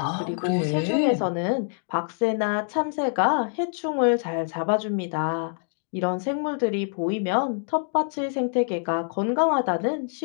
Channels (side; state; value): right; silent; digital silence